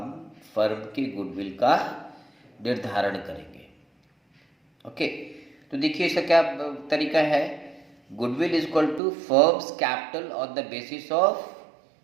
फर्म के गुडविल का निर्धारण करेंगे। ओके, तो देखिए इसका क्या तरीका है। Goodwill is equal to firm's capital on the basis of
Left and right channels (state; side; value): drops out; left; at 9.0 s